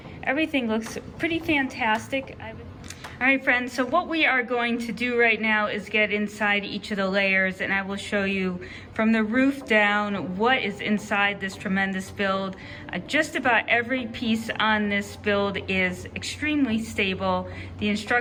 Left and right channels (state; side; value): identical; both; correlation 1.00